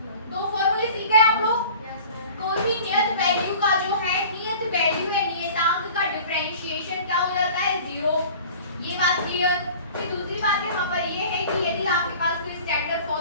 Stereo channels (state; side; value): inverted; both; correlation -0.43